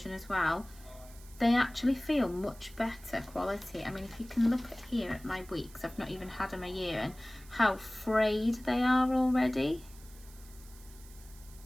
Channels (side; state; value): right; noise; hiss, 22 dB below the sound